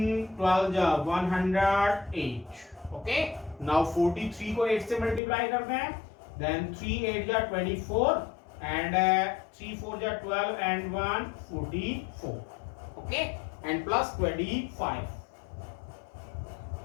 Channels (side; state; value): right; drops out; at 5.2 s